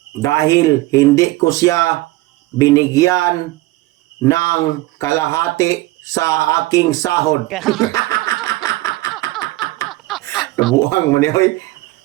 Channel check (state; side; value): quieter; left; 18.6 dB